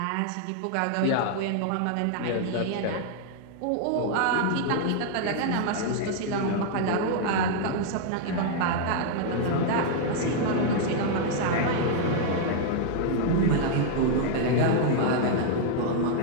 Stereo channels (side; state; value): both; different; correlation 0.00